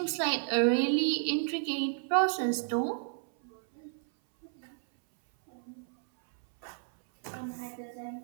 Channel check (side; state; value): left; silent; 57 dB below the other